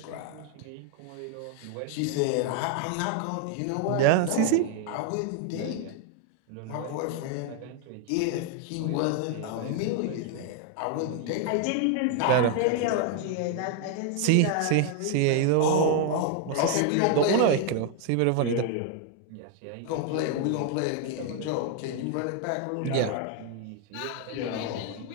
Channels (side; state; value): both; different; correlation 0.00